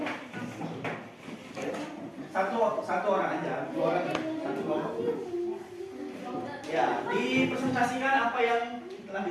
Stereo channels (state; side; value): identical; both; correlation 1.00